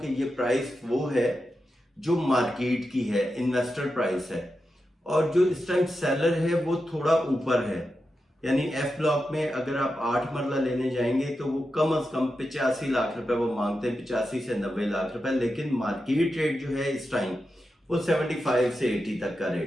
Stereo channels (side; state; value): both; normal; correlation 0.89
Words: ये प्राइस वो है जो मार्केट की है, इन्वेस्टर प्राइस है। और जो इस टाइम सेलर है वो थोड़ा ऊपर है, यानी एफ ब्लॉक में अगर आप 8 मरला लेने जाएंगे तो वो कम से कम 85 लाख रुपए वो मांगते हैं, 85 से 90 लाख रुपए। लेकिन मार्केट रेट जो है इस टाइम वो 75 से 80 तक का